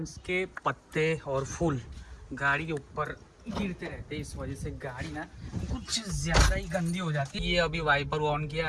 के पत्ते और फूल गाड़ी के ऊपर गिरते रहते, इस वजह से गाड़ी ना कुछ ज्यादा ही गंदी हो जाती है। ये अभी वाइपर ऑन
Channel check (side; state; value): both; identical; correlation 1.00